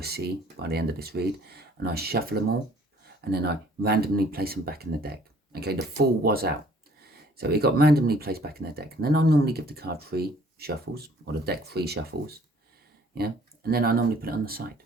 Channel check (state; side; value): normal; both; correlation 0.57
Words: see by the end of this read, and I shuffle them all, and then I randomly place them back in the deck. Okay, the Fool was out, so it got randomly placed back in the deck, and then I normally give the card 3 shuffles, or the deck 3 shuffles, yeah, and then I normally put it on the side.